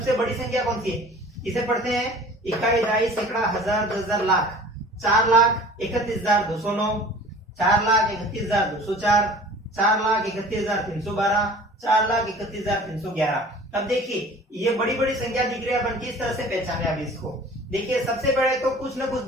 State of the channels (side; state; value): both; normal; correlation 0.45